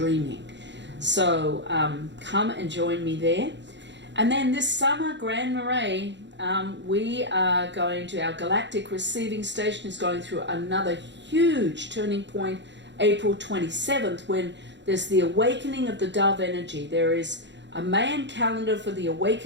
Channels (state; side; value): late; left; 0.52 ms